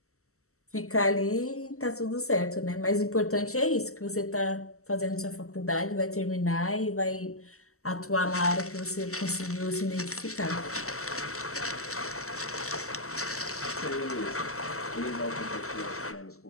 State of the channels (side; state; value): right; late; 0.63 ms